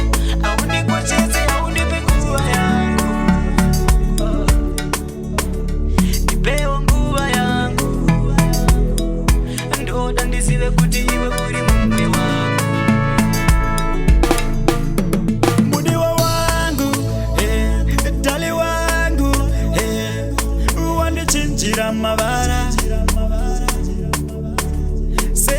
aundikoshese aundipe nguva yangu ipewo nguva yangu ndoda ndizive kuti iwe uri mumwe wangu mudiwa wangu dali wangu wandichinjira mavara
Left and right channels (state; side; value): identical; both; correlation 1.00